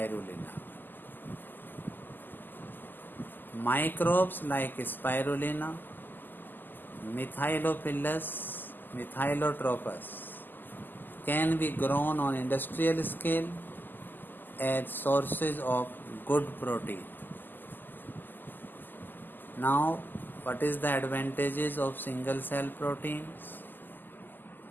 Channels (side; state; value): right; late; 0.090 ms